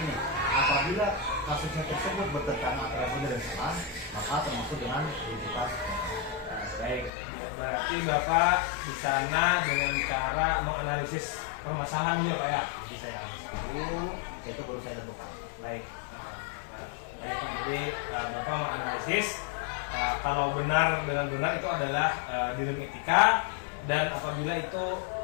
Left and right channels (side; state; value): right; drops out; at 7.1 s